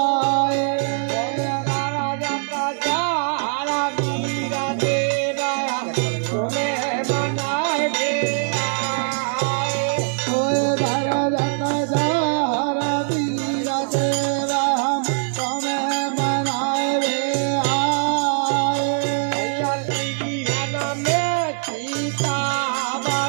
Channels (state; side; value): silent; left; 62 dB below the other